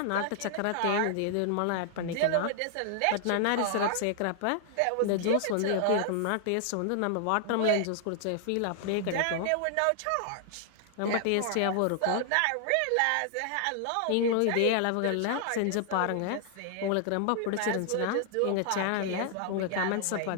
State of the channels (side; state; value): both; different; correlation 0.00